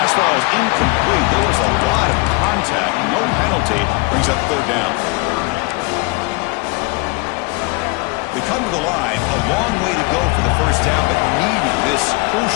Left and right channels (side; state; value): right; quieter; 27.4 dB